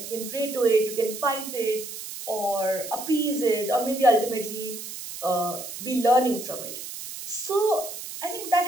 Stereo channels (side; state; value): right; noise; hiss, 10 dB below the sound